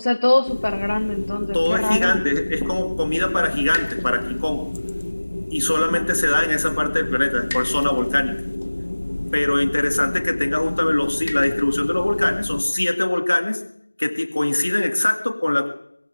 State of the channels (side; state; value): both; inverted; correlation -1.00